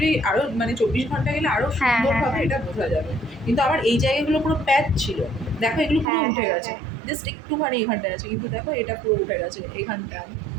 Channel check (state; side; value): drops out; left; at 6.1 s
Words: আরো মানে 24 ঘন্টা গেলে আরো হ্যাঁ, হ্যাঁ, সুন্দরভাবে হ্যাঁ। এটা বোঝা যাবে। কিন্তু আমার এই জায়গাগুলো পুরো প্যাচ ছিল, দেখো এগুলো পুরো হ্যাঁ, উঠে হ্যাঁ, গেছে। হ্যাঁ। জাস্ট একটুখানি এখানটায় আছে, কিন্তু দেখো এটা পুরো উঠে গেছে এইখানটায়